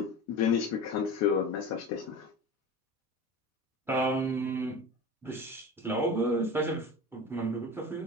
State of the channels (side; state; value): both; normal; correlation 0.31